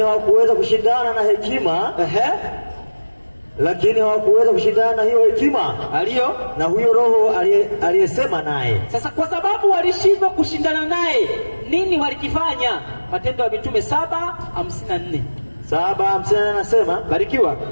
hawakuweza kushindana na hekima. Lakini hawakuweza kushindana na hiyo hekima aliyo na huyo roho aliyesema naye. Sasa kwa sababu walishindwa kushindana naye, nini walikifanya? Matendo ya Mitume 7:54. 7:54 anasema, barikiwa.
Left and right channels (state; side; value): inverted; both; correlation -1.00